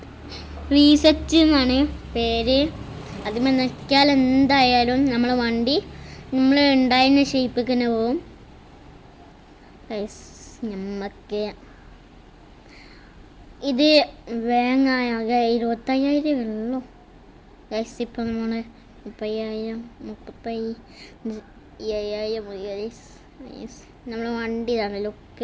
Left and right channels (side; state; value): both; identical; correlation 1.00